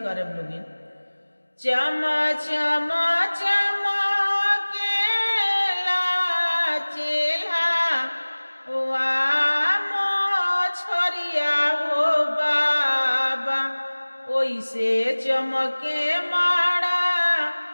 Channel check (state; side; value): inverted; both; correlation -1.00